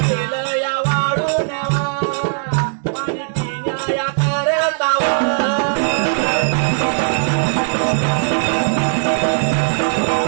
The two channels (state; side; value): silent; left; digital silence